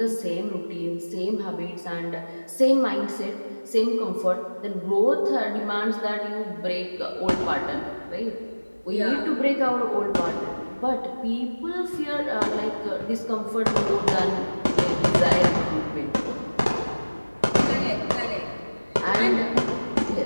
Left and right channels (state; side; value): inverted; both; correlation -1.00